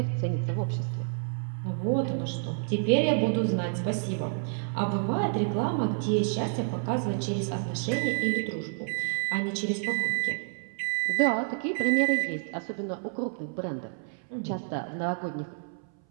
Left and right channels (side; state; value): left; silent; 59 dB below the other